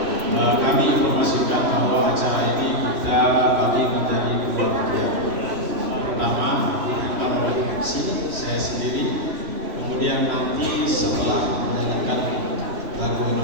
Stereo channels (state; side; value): late; left; 3.0 ms